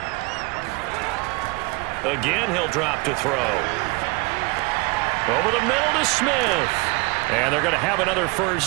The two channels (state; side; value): quieter; left; 26.1 dB